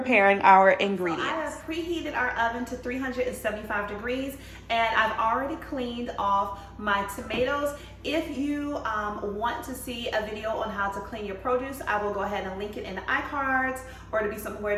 our ingredients. So I have preheated our oven to 375 degrees, and I've already cleaned off my tomatoes. If you want to see a video on how to clean your produce, I will go ahead and link it in the iCards, or it'll be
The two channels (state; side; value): identical; both; correlation 1.00